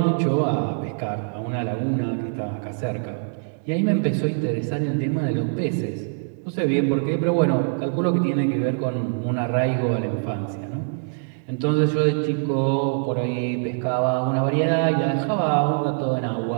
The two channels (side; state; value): left; silent; digital silence